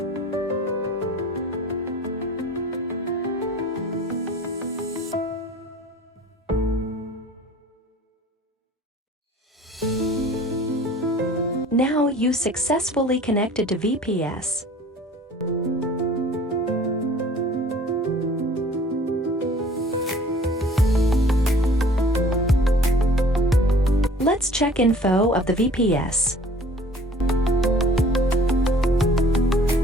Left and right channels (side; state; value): both; normal; correlation 0.50